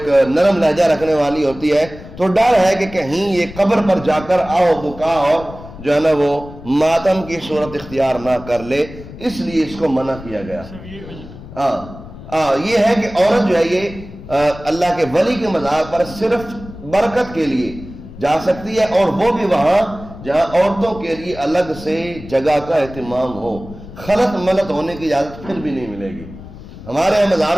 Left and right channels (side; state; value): left; noise; rumble, 15 dB below the sound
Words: نرم لہجہ رکھنے والی ہوتی ہے، تو ڈر ہے کہ کہیں یہ قبر پر جا کر آؤ بکا اور جو ہے نا وہ ماتم کی صورت اختیار نہ کر لے، اس لیے اس کو منع کیا گیا۔ یہ ہے کہ عورت جو ہے یہ اللہ کے ولی کے مزار پر صرف برکت کے لیے جا سکتی ہے، اور وہ بھی وہاں جہاں عورتوں کے لیے الگ سے جگہ کا اہتمام ہو، خلط ملط ہونے کی اجازت پھر بھی نہیں ملے گی۔ ہمارے